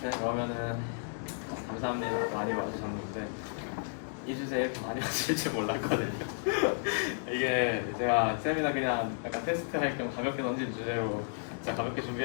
그러면은 감사합니다. 많이 와주셨는데 이 주제에 이렇게 많이 와주실 줄 몰랐거든요. 이게 제가 세미나 그냥 약간 테스트 할 겸 가볍게 던진 주제로 진짜 가볍게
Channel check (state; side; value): silent; right; digital silence